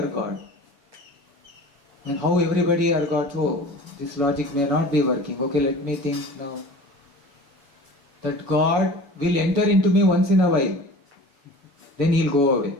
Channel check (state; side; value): late; left; 7.1 ms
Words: God. And how everybody are God? Oh, this logic may not be working. Okay, let me think now. That God will enter into me once in a while. Then he'll go away.